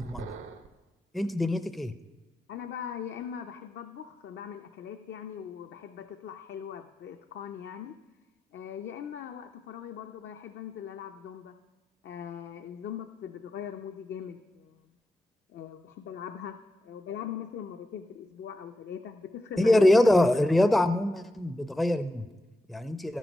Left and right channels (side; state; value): both; normal; correlation 0.89